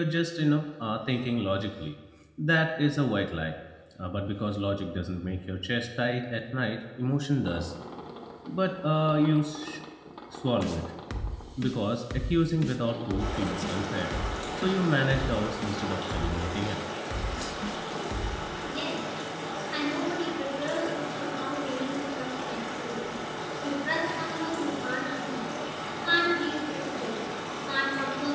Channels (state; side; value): identical; both; correlation 1.00